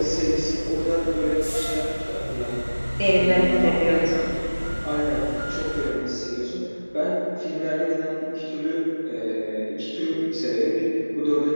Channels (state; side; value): inverted; both; correlation -1.00